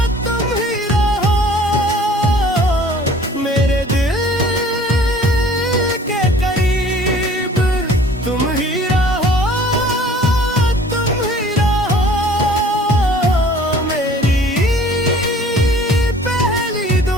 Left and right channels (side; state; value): both; normal; correlation 0.51